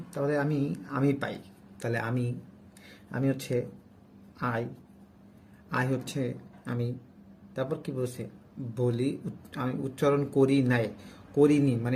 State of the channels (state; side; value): identical; both; correlation 1.00